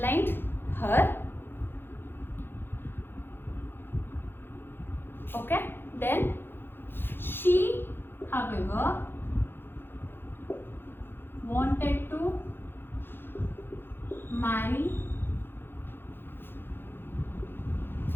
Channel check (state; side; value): late; right; 0.10 ms